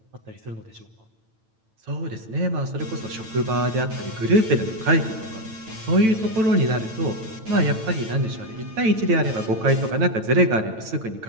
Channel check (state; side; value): late; left; 9.0 ms